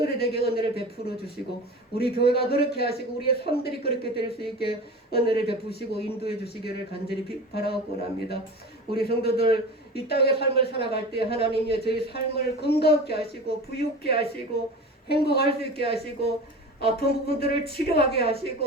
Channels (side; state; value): both; normal; correlation 0.33